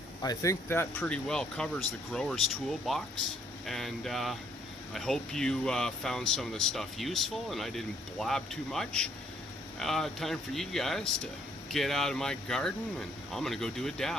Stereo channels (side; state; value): both; normal; correlation 0.66